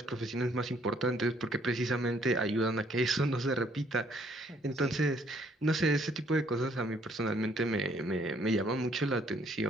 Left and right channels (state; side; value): normal; both; correlation 0.65